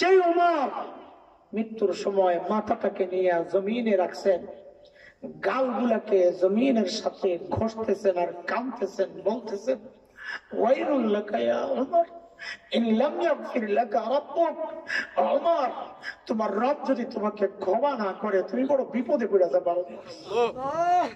ওমর মৃত্যুর সময় মাথাটাকে নিয়ে জমিনে রাখছেন, গালগুলাকে জমিনের সাথে ঘষতেছেন আর কাঁদতেছেন, বলতেছেন ওয়াইলুল লাকা ইয়া ওমর ইন লাম ইয়াগফির লাকা রাব্বুক। ওমর, তোমার রব যদি তোমাকে ক্ষমা না করে তুমি বড় বিপদে পড়ে যাবে।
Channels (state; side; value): identical; both; correlation 1.00